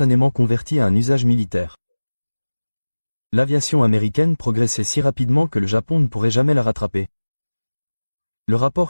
convertie à un usage militaire. L'aviation américaine progressait si rapidement que le Japon ne pourrait jamais la rattraper. Le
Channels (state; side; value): inverted; both; correlation -1.00